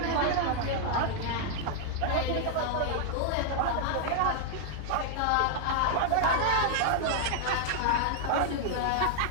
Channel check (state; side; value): different; both; correlation 0.00